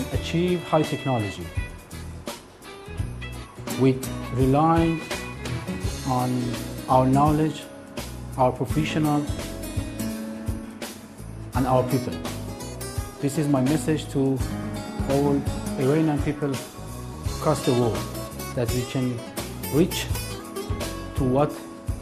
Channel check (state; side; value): identical; both; correlation 1.00